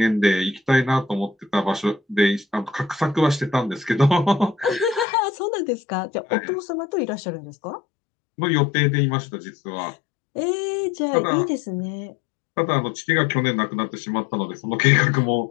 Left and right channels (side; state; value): right; drops out; at 5.1 s